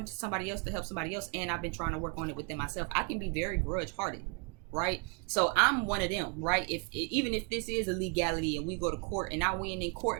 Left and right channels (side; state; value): left; quieter; 35.2 dB